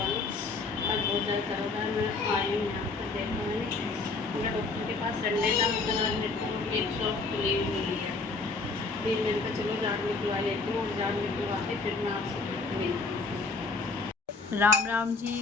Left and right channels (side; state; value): right; quieter; 3.9 dB